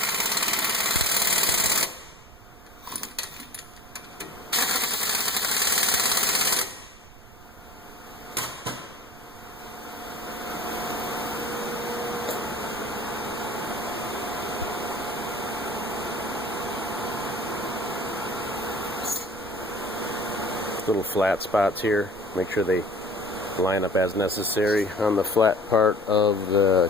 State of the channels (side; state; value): right; noise; rumble, 21 dB below the sound